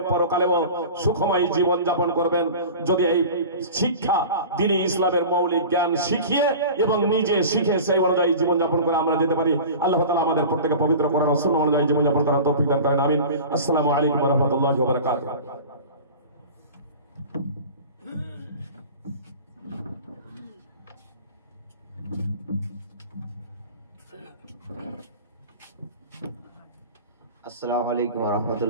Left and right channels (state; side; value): inverted; both; correlation -0.36